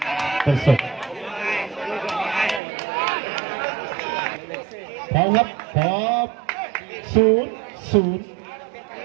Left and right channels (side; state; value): left; drops out; at 2.6 s